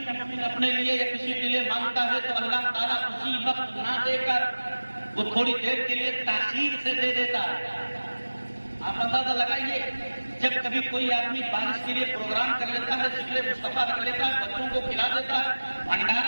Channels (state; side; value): inverted; both; correlation -1.00